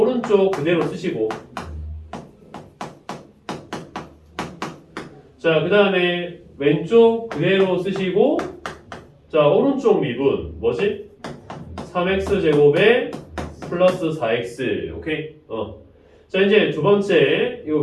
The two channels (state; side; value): identical; both; correlation 1.00